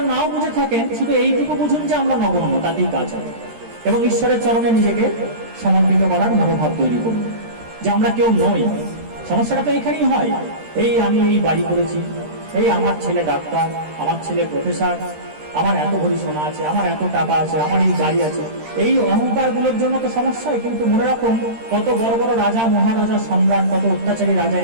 নাও বুঝে থাকেন, শুধু এইটুকু বুঝুন যে আমরা নগণ্য, তাতেই কাজ হবে। এবং ঈশ্বরের চরণে নিজেকে সমর্পিত করার মনোভাব তৈরি করুন যে আমরা কেউ নই। সমস্যাটা তো এখানেই হয়, এই আমি এই বাড়ি করেছি, এই আমার ছেলে ডাক্তার, আমার ছেলে প্রফেসর, আমার এত ভরি সোনা আছে, আমার এত টাকা আছে, আমার এই গাড়ি আছে। এই অহংকার গুলোর জন্য তো সমস্যা হয়। কিন্তু মনে রাখুন কত বড় বড় রাজা, মহারাজা, সম্রাট, কত অত্যাচারী রাজা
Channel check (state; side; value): late; left; 13 ms